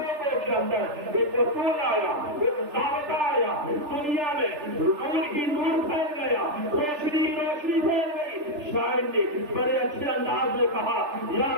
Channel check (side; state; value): left; late; 3.4 ms